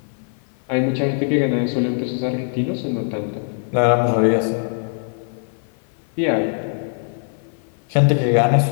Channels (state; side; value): silent; right; 55 dB below the other